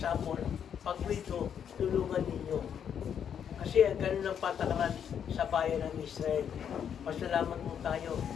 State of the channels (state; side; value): quieter; right; 8.3 dB